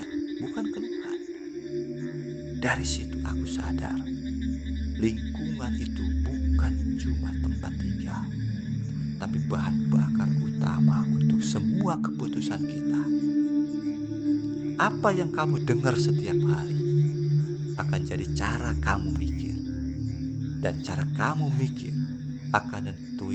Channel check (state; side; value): identical; both; correlation 1.00